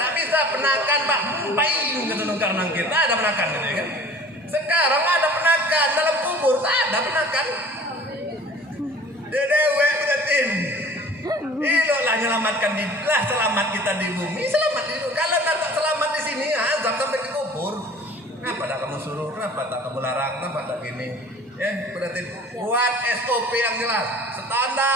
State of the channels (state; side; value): normal; both; correlation 0.46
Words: bisa penakan Pak. Payung kata nungkar nangkir. Tak ada penakan gitu ya kan. Sekarang ada penakan dalam kubur, tak ada penakan. Dewe Budatin. Ilolah nyelamatkan lah, selamat kita di bumi, selamat di bumi. Kalau tak selamat di sini, azab sampai ke kubur. Kenapa tak kamu suruh? Kenapa tak kamu larang? Kenapa tak gini? Ya, Budatin, buat SOP yang jelas,